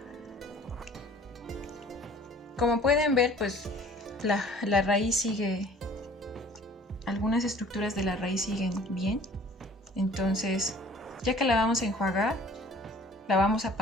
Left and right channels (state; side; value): normal; both; correlation 0.50